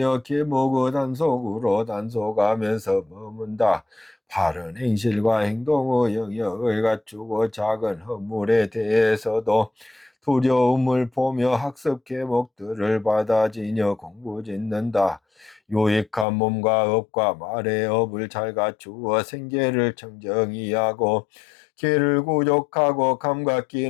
계목의 단속으로 단속하면서 머문다. 바른 행실과 행동의 영역을 갖추고 작은 허물에 대해서도 두려움을 보며 학습 계목들을 받아지며 공부짓는다. 유익한 몸과 업과 말의 업을 잘 갖추어 생계를 청정히 하고 개를 구족하고 감각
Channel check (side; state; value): right; drops out; at 16.2 s